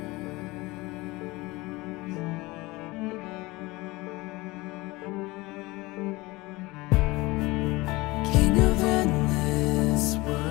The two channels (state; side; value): quieter; right; 21.8 dB